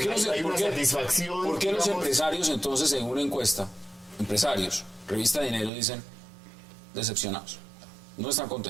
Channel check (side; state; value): left; drops out; at 5.7 s